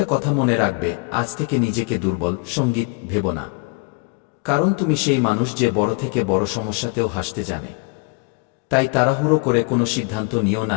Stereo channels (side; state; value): right; quieter; 31.2 dB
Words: কথা মনে রাখবে, আজ থেকে নিজেকে দুর্বল সঙ্গীত ভেবো না। কারণ তুমি সেই মানুষ যে বড় থেকে বড় সমস্যাতেও হাসতে জানে। তাই তাড়াহুড়ো করে কোনো সিদ্ধান্ত নিও না